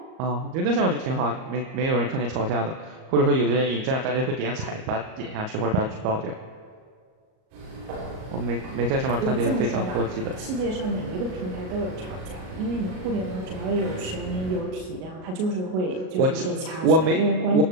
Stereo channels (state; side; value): late; left; 38 ms